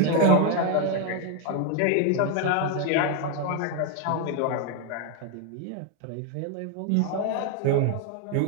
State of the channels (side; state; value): both; different; correlation 0.01